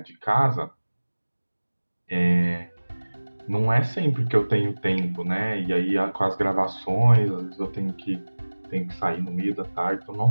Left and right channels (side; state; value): both; inverted; correlation -1.00